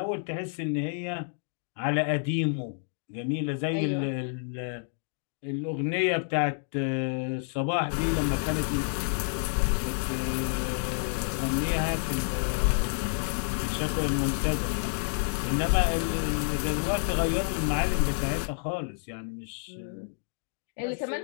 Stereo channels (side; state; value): right; silent; digital silence